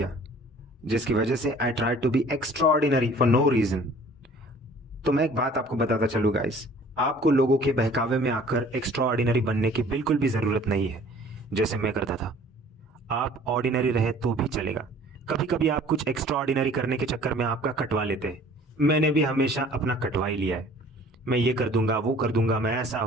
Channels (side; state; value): both; normal; correlation 0.51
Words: जिसकी वजह से I try to be extraordinary for no reason. तो मैं एक बात आपको बताता चलूँ गाइस, आपको लोगों के बहकावे में आकर एक्स्ट्राऑर्डिनरी बनने की बिल्कुल भी ज़रूरत नहीं है, जैसे मैं करता था. आप ऑर्डिनरी रहे तो भी चलेगा. कभी कभी आप कुछ एक्स्ट्राऑर्डिनरी करने के चक्कर में आपका कटवा लेते हैं. मैंने भी हमेशा अपना कटवा ही लिया है. मैं ये कर दूंगा, वो कर दूंगा, मैं ऐसा